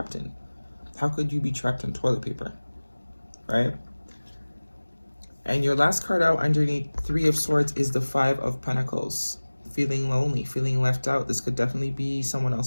in. How could you be trapped in toilet paper, right? And your last card out underneath Three of Swords is the Five of Pentacles. Feeling lonely, feeling left out. This could definitely be someone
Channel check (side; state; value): both; inverted; correlation -1.00